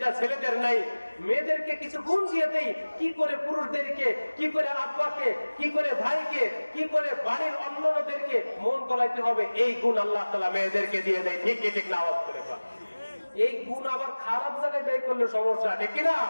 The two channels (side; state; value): both; inverted; correlation -1.00